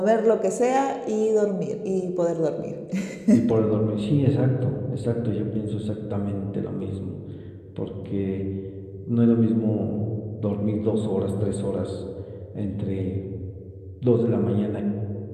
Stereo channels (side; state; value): both; identical; correlation 1.00